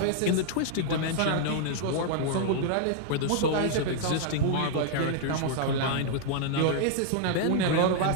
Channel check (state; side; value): different; both; correlation -0.01